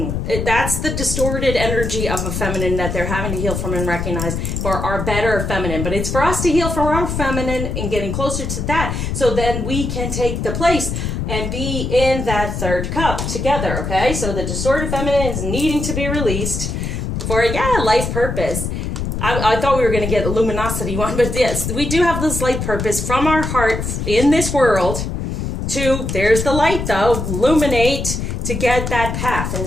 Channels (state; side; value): noise; left; rumble, 3 dB below the sound